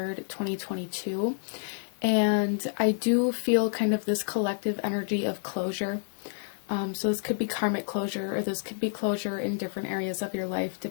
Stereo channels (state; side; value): silent; right; digital silence